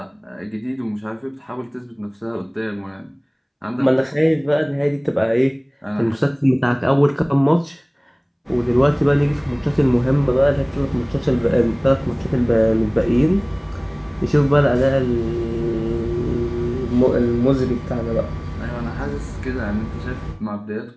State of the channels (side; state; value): both; identical; correlation 1.00